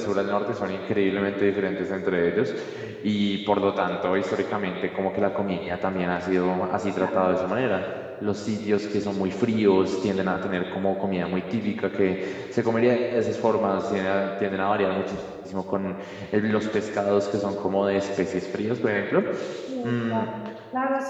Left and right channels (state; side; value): identical; both; correlation 1.00